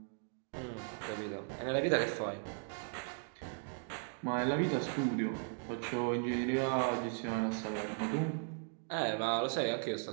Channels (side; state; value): left; silent; 53 dB below the other